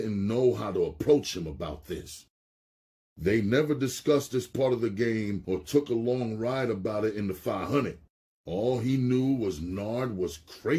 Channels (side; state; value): both; identical; correlation 1.00